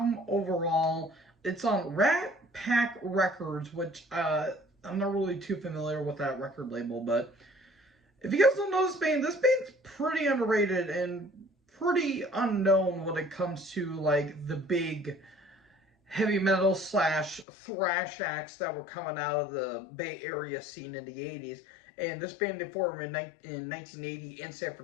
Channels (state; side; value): drops out; right; at 17.4 s